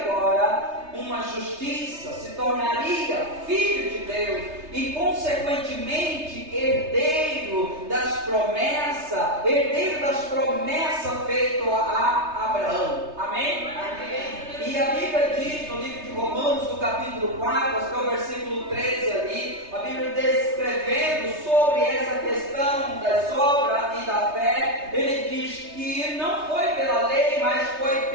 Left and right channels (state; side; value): late; left; 3.3 ms